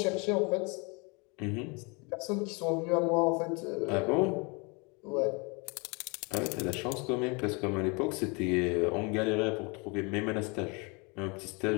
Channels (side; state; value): right; quieter; 30.6 dB